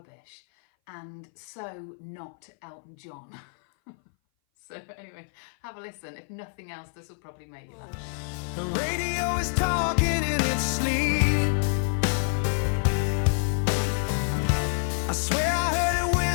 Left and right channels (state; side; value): silent; right; 58 dB below the other